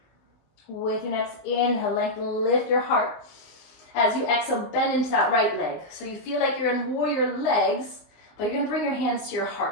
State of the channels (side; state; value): right; late; 19 ms